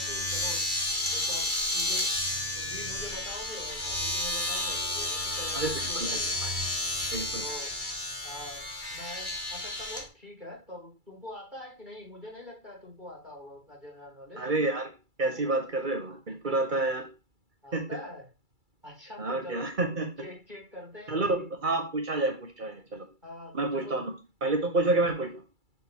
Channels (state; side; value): late; left; 2.3 ms